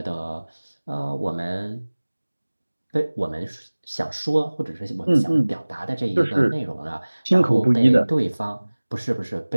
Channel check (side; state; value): both; inverted; correlation -1.00